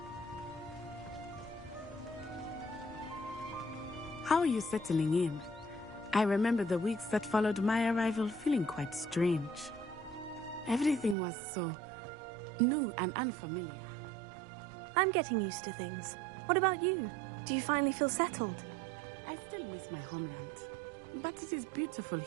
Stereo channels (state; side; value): drops out; left; at 11.2 s